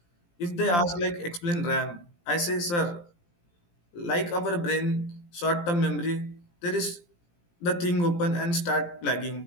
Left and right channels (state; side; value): late; right; 17 ms